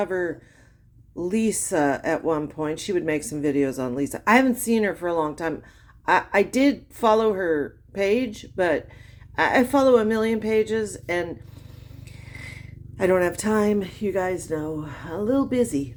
Lisa at one point. She would make some videos on Lisa. I haven't seen her for a long time. I did follow her page, but I follow a million pages and I don't have time. You guys know, a little busy.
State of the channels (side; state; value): both; identical; correlation 1.00